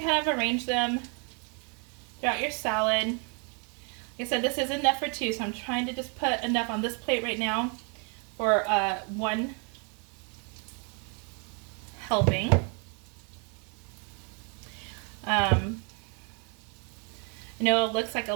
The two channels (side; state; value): left; quieter; 37.3 dB